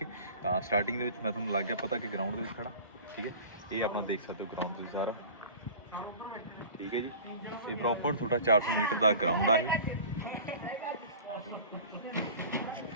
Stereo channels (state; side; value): inverted; both; correlation -0.39